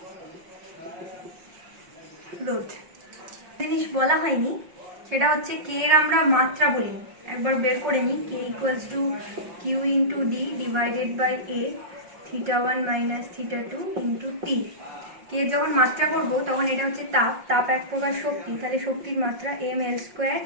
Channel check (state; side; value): late; left; 5.6 ms